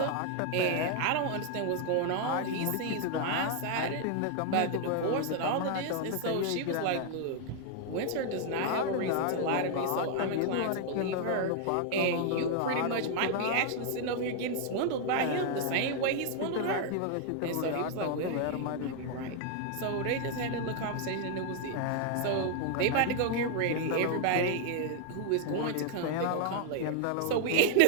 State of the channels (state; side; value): different; both; correlation 0.00